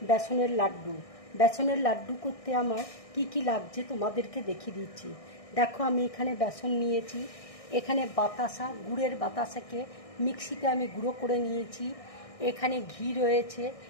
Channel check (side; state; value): right; late; 1.6 ms